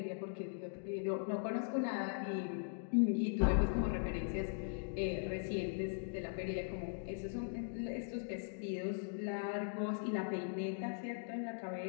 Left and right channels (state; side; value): silent; right; digital silence